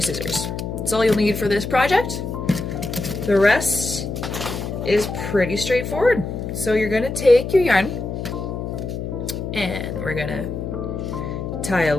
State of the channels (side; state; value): left; noise; hum, 5 dB below the sound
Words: scissors. That's all you'll need for this project. The rest is pretty straightforward. So you're going to take your yarn, and we're going to tie a